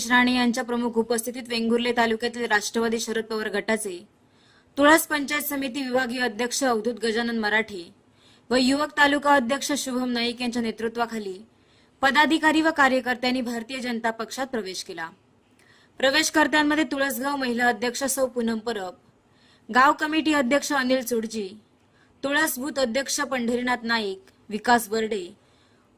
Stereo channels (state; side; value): identical; both; correlation 1.00